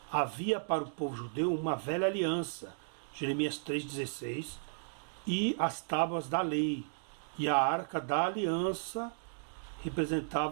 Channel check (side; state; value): left; silent; digital silence